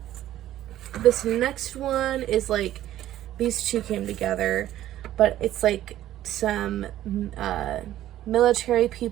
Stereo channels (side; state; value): left; quieter; 13.1 dB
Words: This next one is like, these two came together, but it's like some military